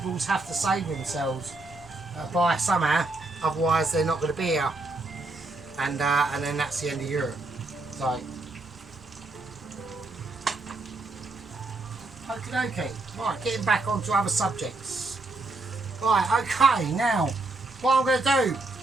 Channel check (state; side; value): quieter; left; 3.1 dB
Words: have to save themselves by somehow, otherwise they're not going to be here, and then that's the end of Europe. So, okie dokie, right, getting back onto other subjects. Right, okay, now, what I'm going to do